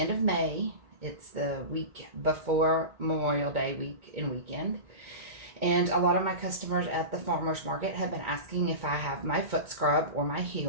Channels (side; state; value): left; late; 2.2 ms